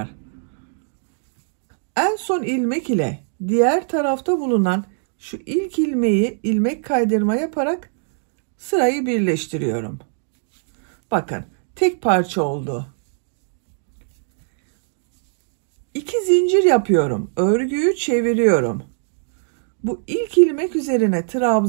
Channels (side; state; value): left; silent; digital silence